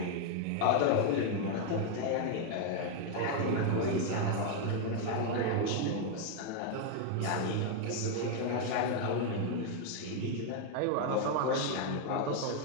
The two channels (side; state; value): both; different; correlation 0.00